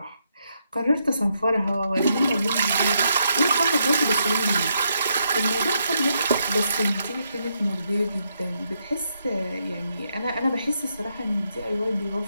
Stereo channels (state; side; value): inverted; both; correlation -0.78